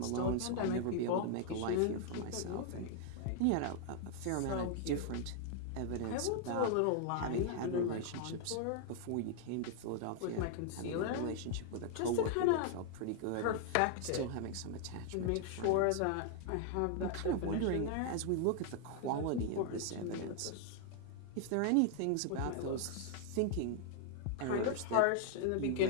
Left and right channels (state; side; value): different; both; correlation 0.00